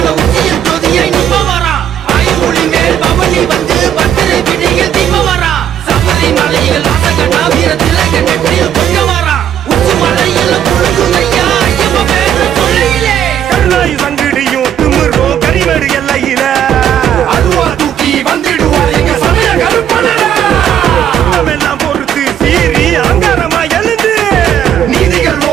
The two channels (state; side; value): quieter; left; 9.8 dB